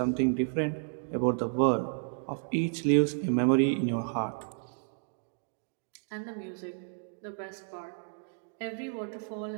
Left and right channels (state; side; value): silent; left; digital silence